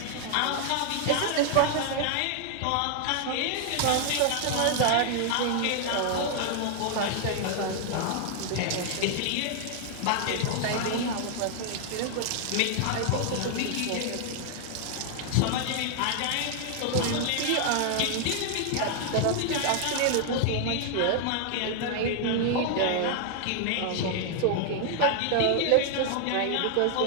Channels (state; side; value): different; both; correlation 0.00